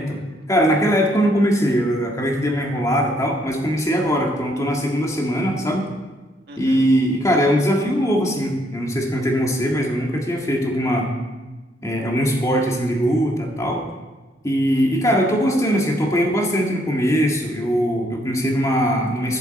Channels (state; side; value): normal; both; correlation 0.70